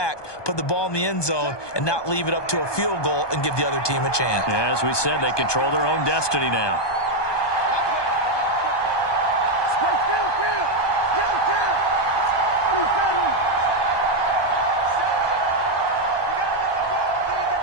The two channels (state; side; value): late; right; 1.2 ms